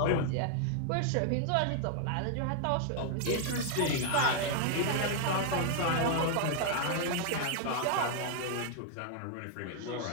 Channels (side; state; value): both; different; correlation 0.00